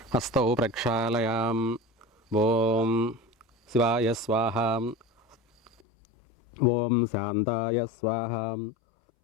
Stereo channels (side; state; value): right; drops out; at 5.7 s